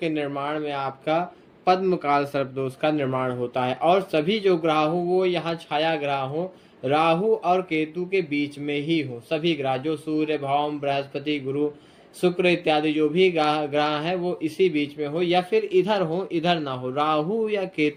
निर्माण में आपका पद्मकाल सर्पदोष का निर्माण होता है। और सभी जो ग्रह हो वो यहाँ छाया ग्रह हो, राहु और केतु के बीच में ही हो। सभी ग्रह जो सूर्य, भौम, बृहस्पति, गुरु, शुक्र इत्यादि जो भी ग्रह है वो इसी बीच में हो, या फिर इधर हो, इधर ना हो, राहु या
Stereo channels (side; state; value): both; identical; correlation 1.00